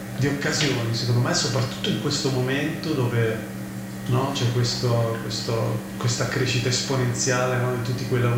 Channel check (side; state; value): both; identical; correlation 1.00